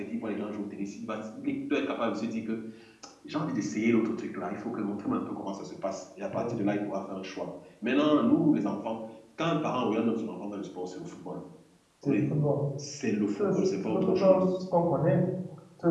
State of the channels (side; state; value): both; identical; correlation 1.00